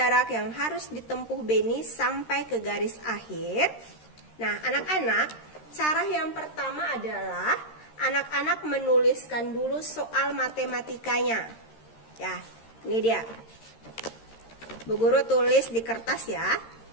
yang harus ditempuh Beni sampai ke garis akhir? Nah, anak-anak, cara yang pertama adalah anak-anak menuliskan dulu soal matematikanya. Ya, ini dia. Bu Guru tulis di kertas ya.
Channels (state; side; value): late; right; 13 ms